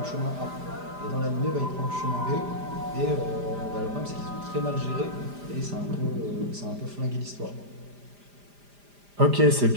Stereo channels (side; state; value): left; late; 5.0 ms